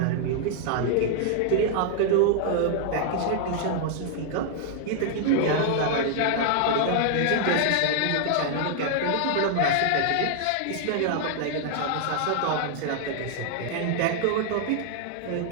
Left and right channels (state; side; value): different; both; correlation 0.00